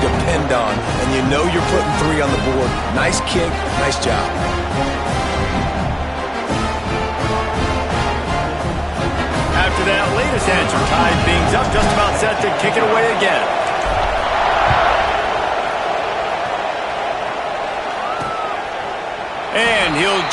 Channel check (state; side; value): identical; both; correlation 1.00